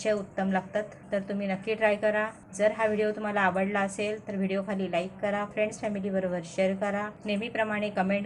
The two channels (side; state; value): both; identical; correlation 1.00